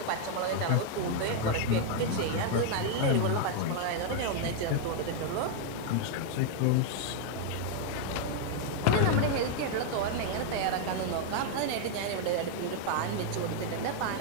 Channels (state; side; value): different; both; correlation 0.00